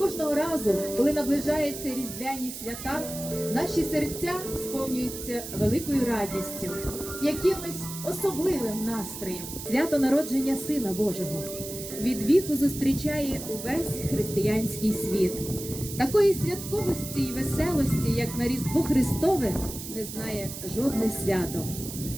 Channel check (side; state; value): right; noise; hiss, 9 dB below the sound